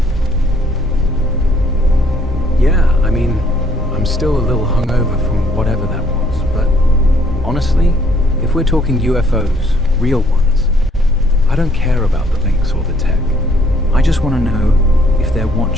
Yeah, I mean, I'm still a little hungover from whatever that was, but honestly, if we're talking UFOs, real ones, I don't care about the links or the tech. I just want to know if they're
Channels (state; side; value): normal; both; correlation 0.64